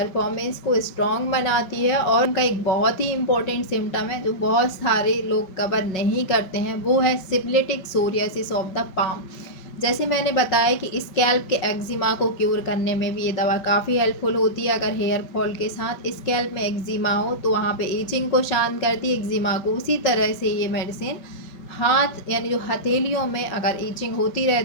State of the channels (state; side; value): late; right; 5.5 ms